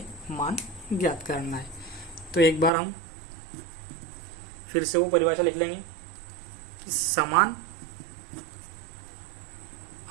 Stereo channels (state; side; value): drops out; left; at 2.7 s